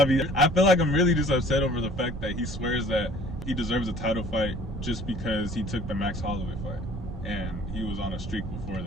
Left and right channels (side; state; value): right; noise; rumble, 8 dB below the sound